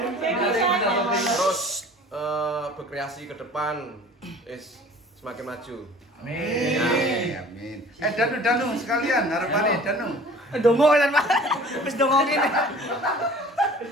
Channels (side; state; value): both; normal; correlation 0.47